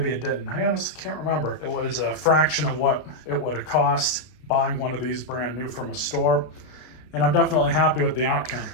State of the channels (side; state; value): right; late; 33 ms